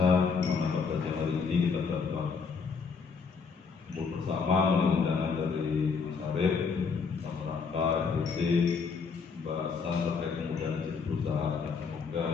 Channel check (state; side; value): quieter; right; 5.3 dB